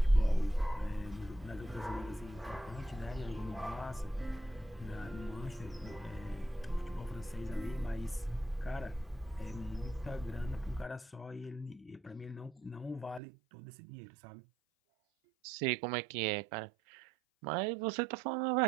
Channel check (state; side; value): drops out; left; at 13.2 s